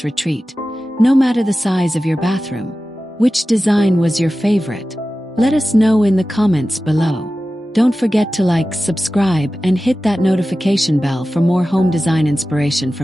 retreat, no matter the size of your bathroom. Which design was your favorite? Let us know in the comments below. Don't forget to like, subscribe, and hit that notification bell for more home design inspiration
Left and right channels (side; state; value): both; normal; correlation 0.95